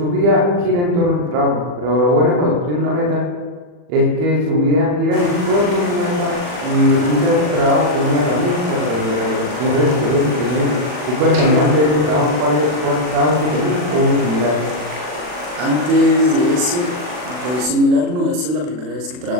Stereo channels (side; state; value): left; late; 40 ms